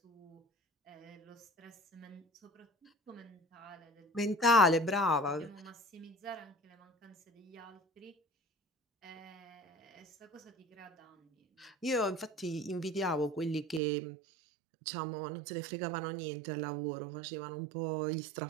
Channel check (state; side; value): drops out; left; at 13.8 s